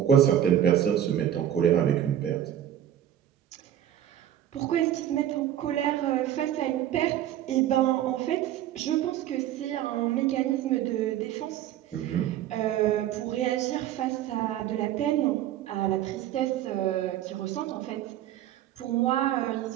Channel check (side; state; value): left; quieter; 11.3 dB